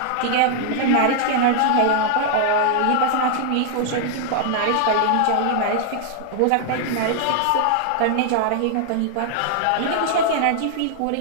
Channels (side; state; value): both; different; correlation 0.00